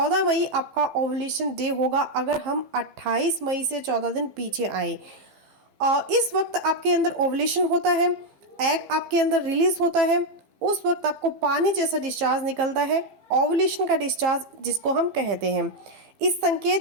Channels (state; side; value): late; left; 15 ms